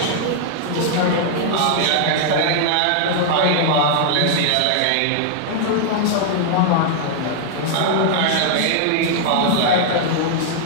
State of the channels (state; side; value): different; both; correlation -0.01